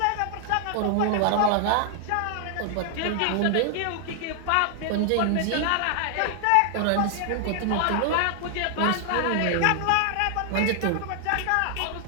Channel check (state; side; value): different; both; correlation 0.00